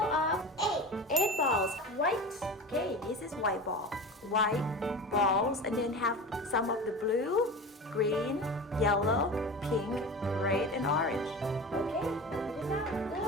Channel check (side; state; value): both; normal; correlation 0.31